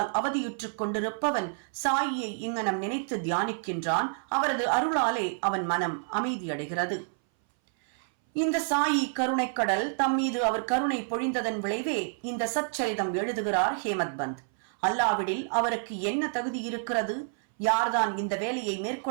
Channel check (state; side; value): silent; left; 59 dB below the other